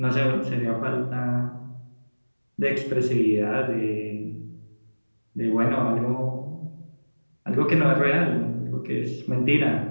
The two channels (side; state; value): both; inverted; correlation -1.00